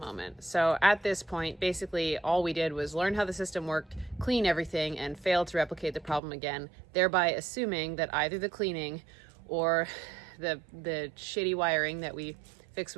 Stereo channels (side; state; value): left; drops out; at 6.2 s